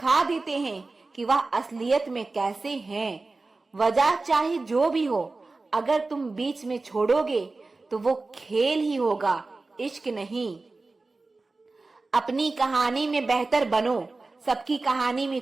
देते हैं कि वह असलियत में कैसे हैं। वजह चाहे जो भी हो, अगर तुम बीच में छोड़ोगे तो वो खेल ही होगा, इश्क नहीं। अपनी कहानी में बेहतर बनो, सबकी कहानी में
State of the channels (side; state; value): left; quieter; 3.5 dB